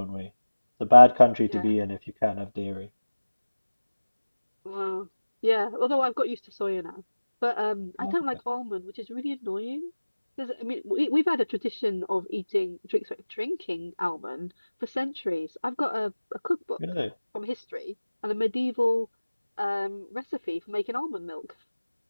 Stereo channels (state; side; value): inverted; both; correlation -1.00